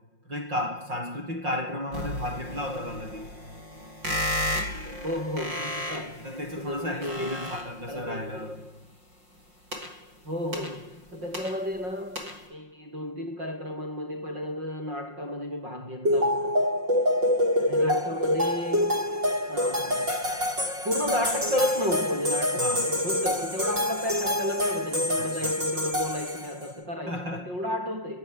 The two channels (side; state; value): left; late; 5.6 ms